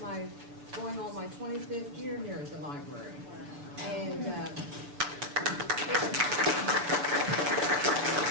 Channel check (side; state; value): left; late; 6.9 ms